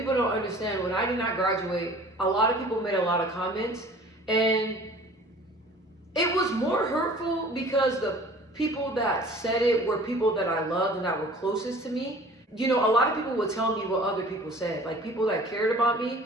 don't understand. When I did not graduate, a lot of people made a lot of comments, and it was more hurtful because the people that said it were people that I loved and that were closest to me. You know, a lot of people would tell me what other people said, like people that cared about me,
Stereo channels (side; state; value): both; normal; correlation 0.47